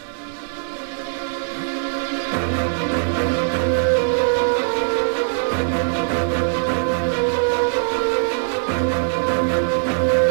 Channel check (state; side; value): silent; left; digital silence